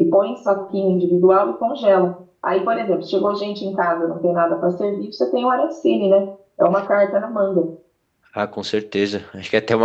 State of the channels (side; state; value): both; identical; correlation 1.00